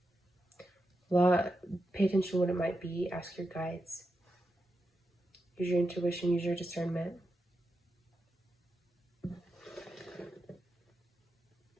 pay attention to what it might be. Ask your guides. Use your intuition. Use your discernment.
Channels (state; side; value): normal; both; correlation 0.87